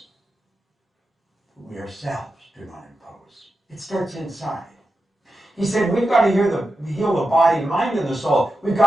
We ourselves do not impose. It starts inside. He said, we've got to heal the body, mind, and the soul. We've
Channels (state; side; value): normal; both; correlation 0.90